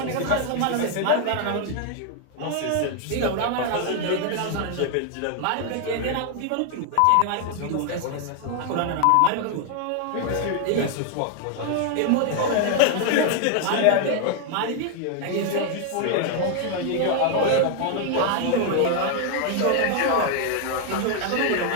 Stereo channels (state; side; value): different; both; correlation 0.00